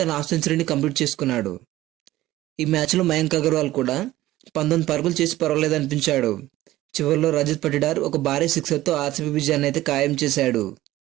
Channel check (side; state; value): left; quieter; 15.9 dB